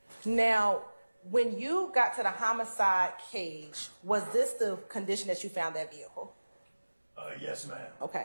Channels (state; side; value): inverted; both; correlation -1.00